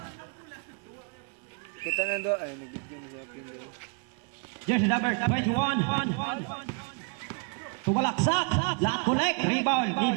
Kita na do ay nag-video ni siya pin. Jersey number 21 to Balaksak. Lot collect. Rebound.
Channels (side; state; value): left; quieter; 35.4 dB